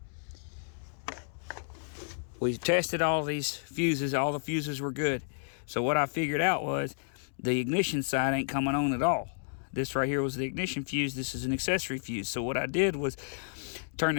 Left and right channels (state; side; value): silent; right; digital silence